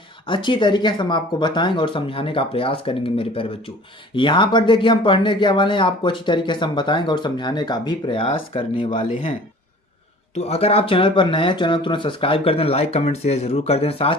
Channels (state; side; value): normal; both; correlation 0.46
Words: अच्छी तरीके से हम आपको बताएंगे और समझाने का प्रयास करेंगे मेरे प्यारे बच्चों। यहाँ पर देखिए हम पढ़ने क्या वाले हैं, आपको अच्छी तरीके से हम बताएंगे और समझाने का भी प्रयास करने वाले हैं। तो अगर आप चैनल पर नए हैं, चैनल तुरंत सब्सक्राइब कर दें, लाइक कमेंट शेयर जरूर कर दें,